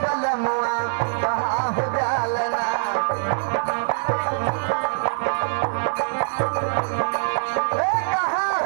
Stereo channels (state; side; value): silent; left; digital silence